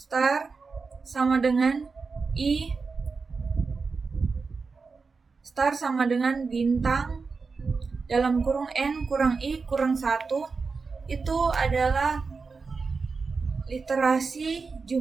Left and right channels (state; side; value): quieter; left; 4.6 dB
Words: star sama dengan I star sama dengan bintang dalam kurung N kurang I kurang 1 itu adalah literasi